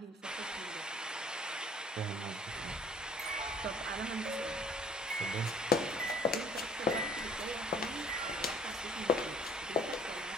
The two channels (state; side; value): normal; both; correlation 0.55